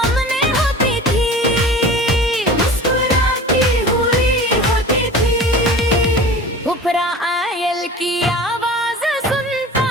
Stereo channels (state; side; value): normal; both; correlation 0.38